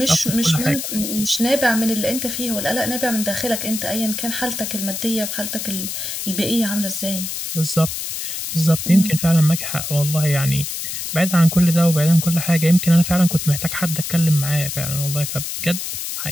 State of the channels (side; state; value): left; noise; hiss, 5 dB below the sound